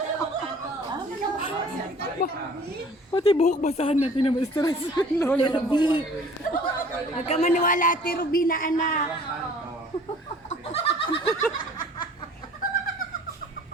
Pati buhok basahan natin na stress. Lola Ruby. Huwag ka maniwala, Ate Ruby na anak.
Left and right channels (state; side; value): normal; both; correlation 0.50